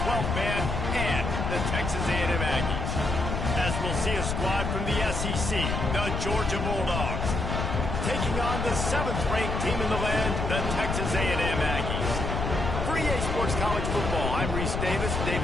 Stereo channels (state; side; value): noise; left; rumble, 2 dB below the sound